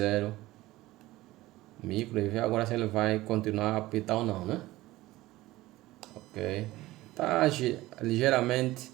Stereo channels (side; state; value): left; quieter; 17.8 dB